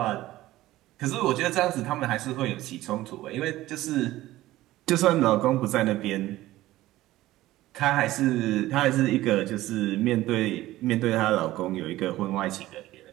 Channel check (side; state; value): left; quieter; 16.2 dB